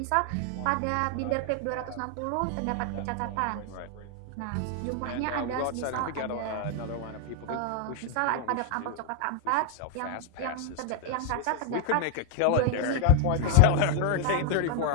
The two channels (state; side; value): different; both; correlation 0.00